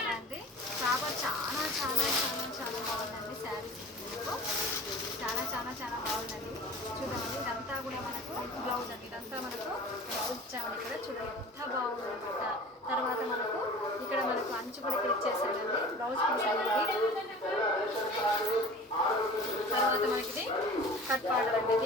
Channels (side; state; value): both; normal; correlation 0.40